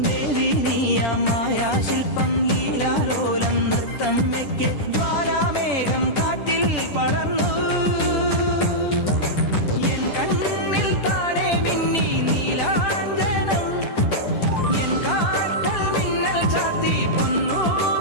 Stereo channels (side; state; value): right; late; 10 ms